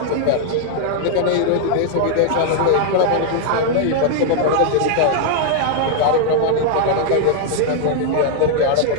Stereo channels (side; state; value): both; different; correlation -0.01